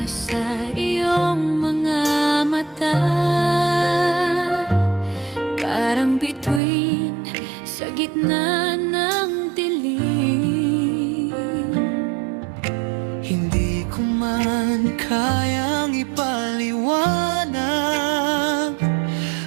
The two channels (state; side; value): drops out; left; at 6.6 s